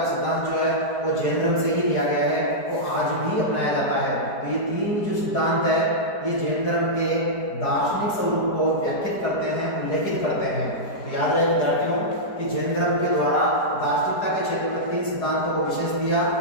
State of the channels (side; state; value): right; late; 4.8 ms